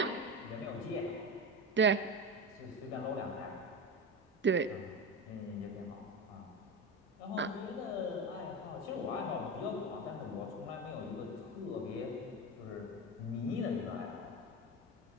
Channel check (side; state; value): both; normal; correlation 0.22